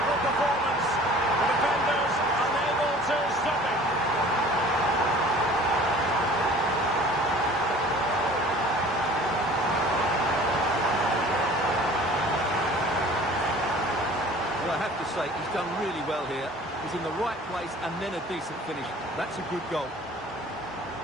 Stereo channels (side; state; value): both; normal; correlation 0.47